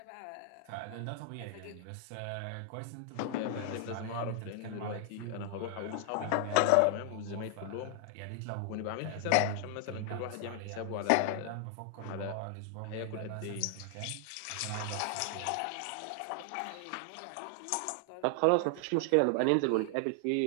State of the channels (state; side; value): different; both; correlation 0.00